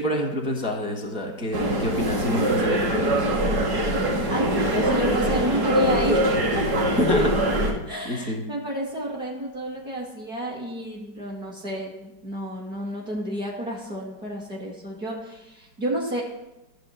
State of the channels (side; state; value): left; late; 4.9 ms